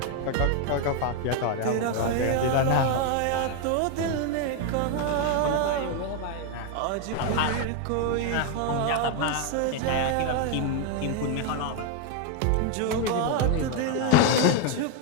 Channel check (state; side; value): different; both; correlation 0.01